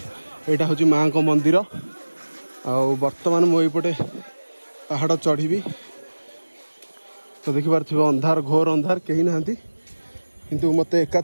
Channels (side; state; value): both; inverted; correlation -1.00